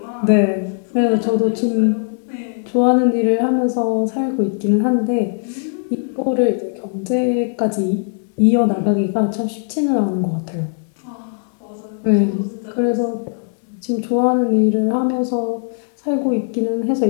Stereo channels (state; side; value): silent; right; digital silence